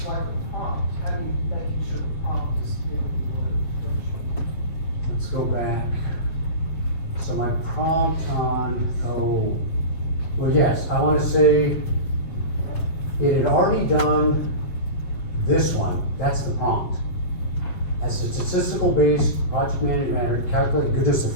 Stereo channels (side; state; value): right; late; 7.6 ms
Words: like a prompt, how do you, making sure the prompt is giving you what it. Let's go back. So my prompt on, well, yes, I wanna say it had already done this one, that's the prompt. As a statistical based project management, calculate goodness of